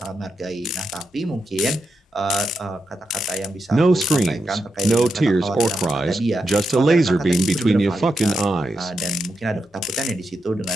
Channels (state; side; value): normal; both; correlation 0.86